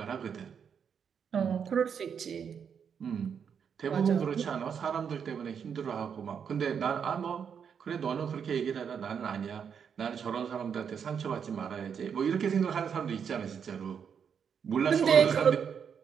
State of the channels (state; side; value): quieter; left; 7.2 dB